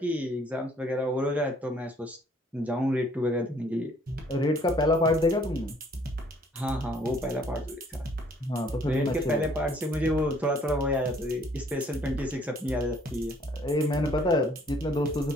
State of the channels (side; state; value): both; normal; correlation 0.61